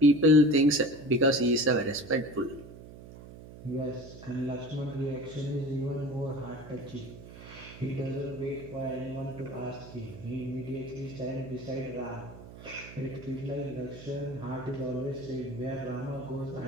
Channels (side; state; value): right; noise; hum, 16 dB below the sound